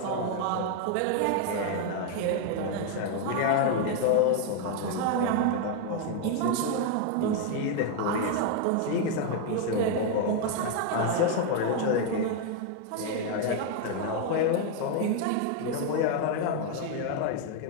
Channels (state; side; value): different; both; correlation 0.01